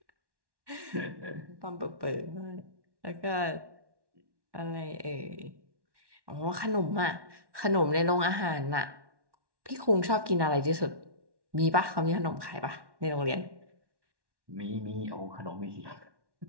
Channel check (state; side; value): late; left; 1.1 ms